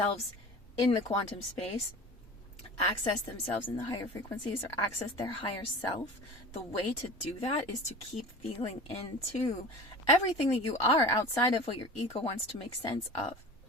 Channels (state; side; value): normal; both; correlation 0.37